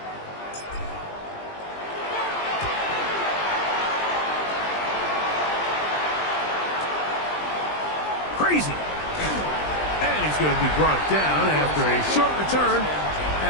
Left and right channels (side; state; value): right; late; 20 ms